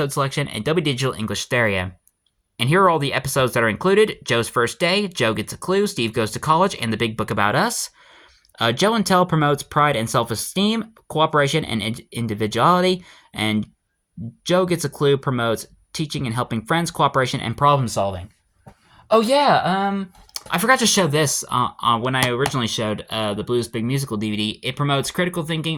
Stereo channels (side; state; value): both; identical; correlation 1.00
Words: selection, and W Digital English Stereo. And here are all the episodes that are included. Joe's First Day, Joe Gets a Clue, Steve Goes to College, and The Big Book About Us. Joe and Tell promotes pride and self-esteem, cooperation and individuality. And Joe Gets a Clue promotes teaching and helping friends, cooperation, and problem solving. Oh yeah, I forgot to show this when I originally showed the Blues Big Musical DVD. It promotes critical